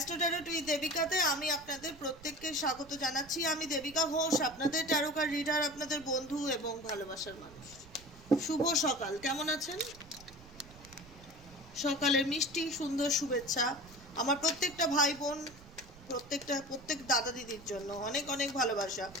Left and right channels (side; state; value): right; noise; rumble, 21 dB below the sound